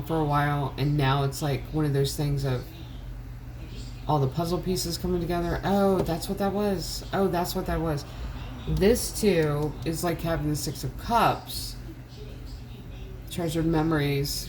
for a while, and now it's like one of those things of all the puzzle pieces coming together. Oh, that's what that was. Oh, that's what that was. This too is like having the 6 of Cups, treasured memories,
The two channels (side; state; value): both; identical; correlation 1.00